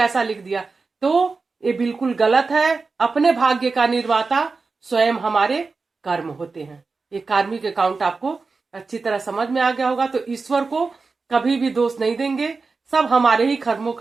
लिख दिया, तो ये बिल्कुल गलत है। अपने भाग्य का निर्माता स्वयं हमारे कर्म होते हैं। ये कार्मिक अकाउंट आपको अच्छी तरह समझ में आ गया होगा। तो ईश्वर को कभी भी दोष नहीं देंगे, सब हमारे ही कर्मों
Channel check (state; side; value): quieter; left; 4.3 dB